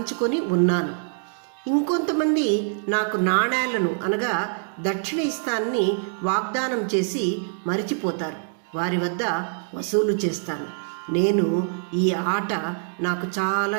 ఉన్నాను. ఇంకొంతమంది నాకు నాణేలను అనగా దక్షిణ ఇస్తానని వాగ్దానం చేసి మరిచిపోతారు, వారి వద్ద వసూలు చేస్తాను. నేను ఈ ఆట నాకు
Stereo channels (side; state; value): left; silent; digital silence